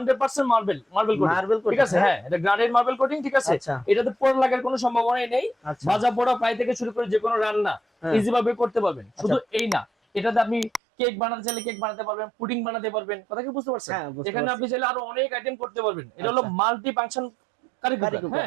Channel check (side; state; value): left; drops out; at 10.8 s